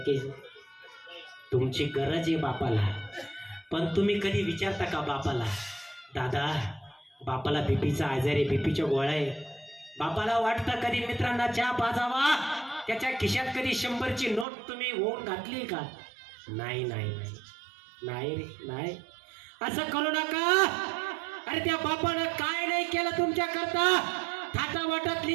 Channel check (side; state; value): left; drops out; at 14.5 s